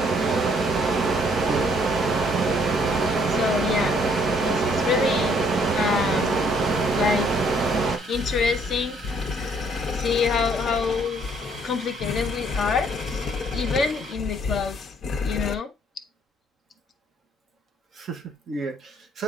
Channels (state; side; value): normal; both; correlation 0.64